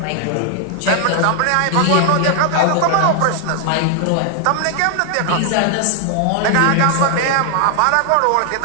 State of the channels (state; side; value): different; both; correlation 0.00